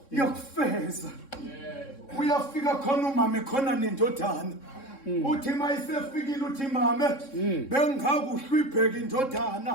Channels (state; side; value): late; right; 3.6 ms